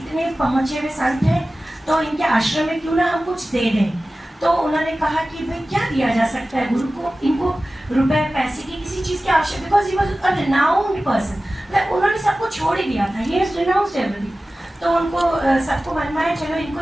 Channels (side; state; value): both; normal; correlation 0.96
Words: पहुँचे हुए संत हैं तो इनके आश्रम में क्यों ना हम कुछ दे दें. तो उन्होंने कहा कि भाई क्या दिया जा सकता है गुरु को. इनको रुपए पैसे की किसी चीज़ की आवश्यकता, because he was a renowned person. उन्होंने सबको छोड़ ही दिया था, ही हैज रिनाउंस्ड एवरीथिंग. तो उनको सबको मन में आया चलो इनको